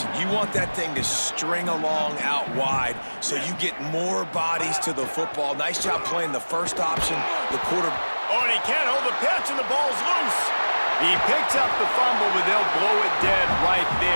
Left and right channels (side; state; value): both; inverted; correlation -1.00